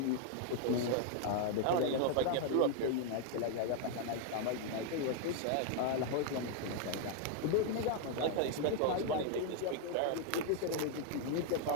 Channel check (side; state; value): both; different; correlation 0.00